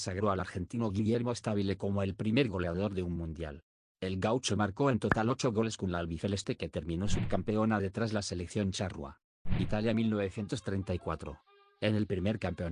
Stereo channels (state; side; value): identical; both; correlation 1.00